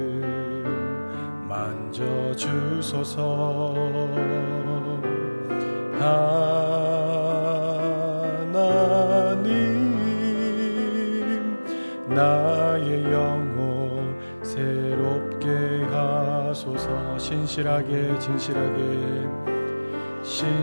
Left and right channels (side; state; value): both; inverted; correlation -1.00